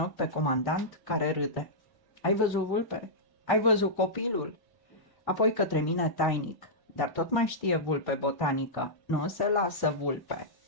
pe comandant care râde. Ai văzut, Vulpe? Ai văzut copilul? Apoi către mine tainic, dar tot mai știe Vulpe botanică. Nu se lasă, Vulpe,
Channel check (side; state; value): right; late; 1.1 ms